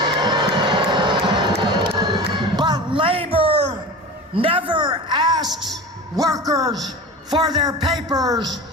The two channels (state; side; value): normal; both; correlation 0.31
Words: But labor never asks workers for their papers.